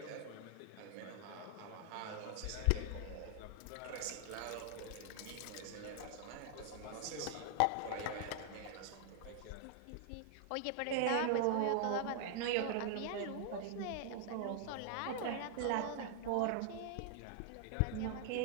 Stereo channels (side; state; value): both; different; correlation 0.00